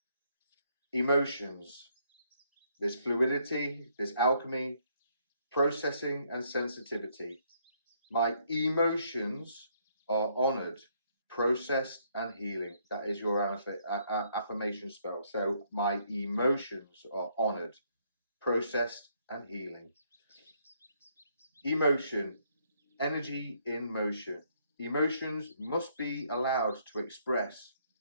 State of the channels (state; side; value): inverted; both; correlation -0.70